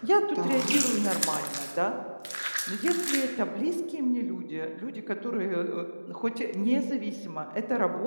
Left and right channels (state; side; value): inverted; both; correlation -1.00